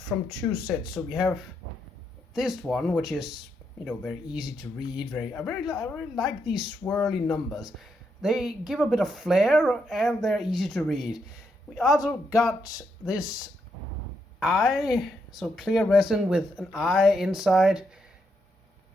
from 2 sets. So we have this one, which is, very easy to read. I really like these swirly numbers. They give a bit of flair and they're easy to read. We also got this eye, so clear resin with an eye inside.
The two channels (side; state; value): both; normal; correlation 0.79